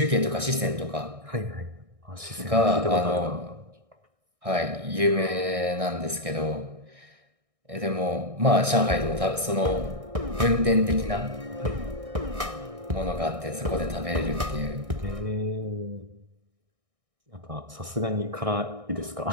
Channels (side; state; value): left; late; 1.6 ms